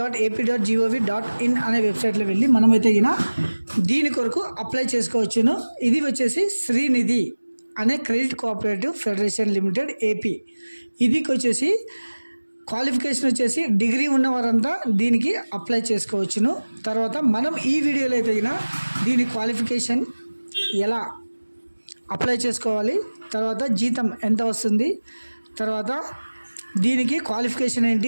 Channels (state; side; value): inverted; both; correlation -1.00